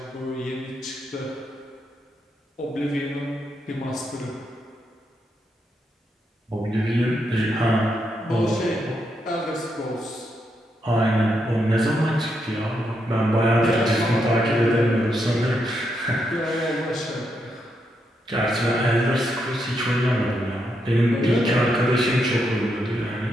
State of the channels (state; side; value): normal; both; correlation 0.81